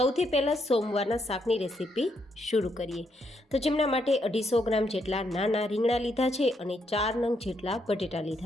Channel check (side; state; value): both; normal; correlation 0.77